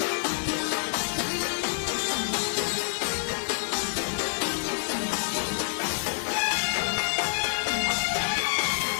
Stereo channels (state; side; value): silent; right; digital silence